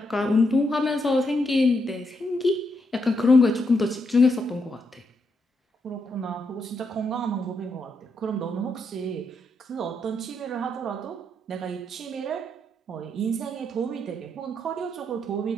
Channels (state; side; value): normal; both; correlation 0.80